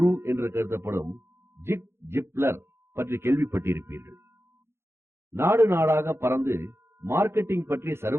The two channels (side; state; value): left; late; 0.12 ms